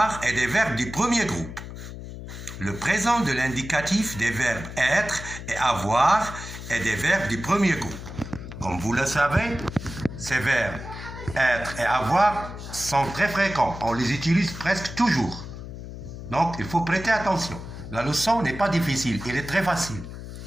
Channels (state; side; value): noise; left; hum, 11 dB below the sound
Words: et des verbes du premier groupe. Le présent de l'indicatif des verbes être et avoir et des verbes du premier groupe. Comme vous le savez, ces verbes être et avoir sont très fréquents. On les utilise presque toujours. Donc, il faut prêter attention. La leçon n'est pas difficile, elle est très facile.